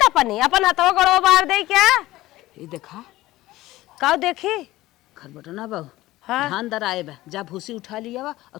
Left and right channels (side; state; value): right; quieter; 17.1 dB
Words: तपनी अपन हाथवा गोड़वा बार दे क्या ये देखा का देखी खरबटना बाबू हाँ? धान दर आए बा जा भूसी उठा लिया बा और